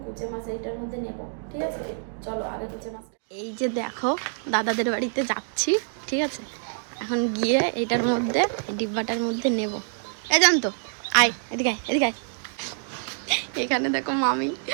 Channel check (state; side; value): silent; left; digital silence